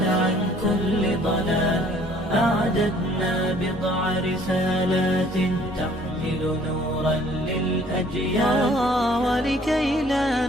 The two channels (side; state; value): both; normal; correlation 0.57